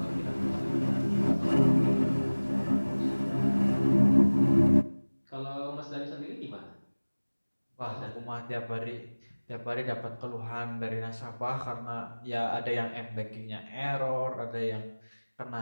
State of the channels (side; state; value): both; inverted; correlation -1.00